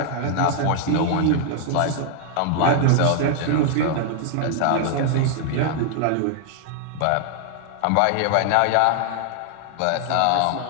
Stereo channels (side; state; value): both; different; correlation 0.00